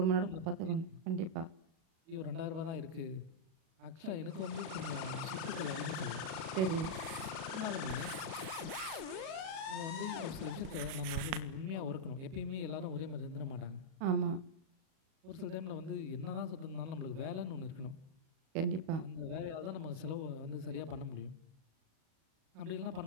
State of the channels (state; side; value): late; left; 37 ms